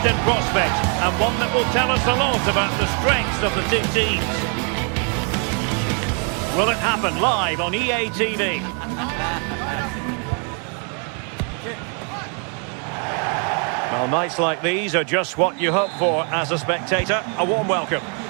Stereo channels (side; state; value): left; quieter; 39.7 dB